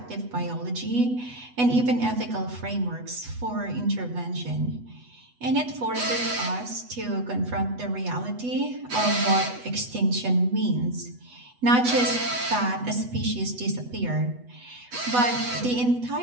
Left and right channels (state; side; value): late; left; 8.1 ms